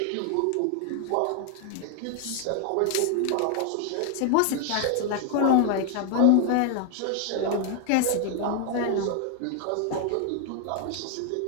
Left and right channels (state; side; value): different; both; correlation 0.00